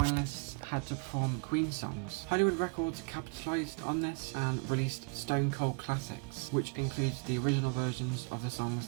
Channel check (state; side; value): quieter; left; 34.8 dB